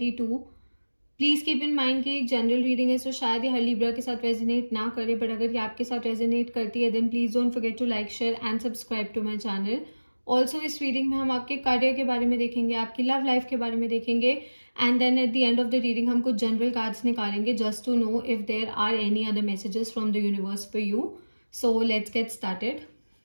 Please keep in mind कि एक जनरल रीडिंग है, सो शायद ये हर लिब्रा के साथ रेजोनेट ना करे, बट अगर ये आपके साथ रेजोनेट करती है then please don't forget to like, share and subscribe to my channel. Also इस रीडिंग में हम आपके करियर के बारे में देखेंगे, आपकी लव लाइफ के बारे में देखेंगे, and then at the end of the reading हम कुछ जनरल कार्ड्स निकालेंगे just to know if there are any other messages from the universe for you. So let's get started.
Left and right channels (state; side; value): inverted; both; correlation -1.00